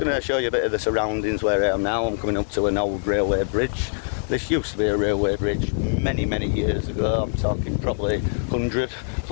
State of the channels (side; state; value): right; silent; digital silence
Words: to show you a bit of the surroundings where I am now. I'm coming up to an old railway bridge. This used to be a railway bridge many years ago. I'm talking probably 100